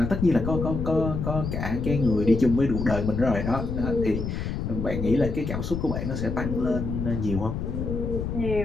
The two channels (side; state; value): left; noise; rumble, 3 dB below the sound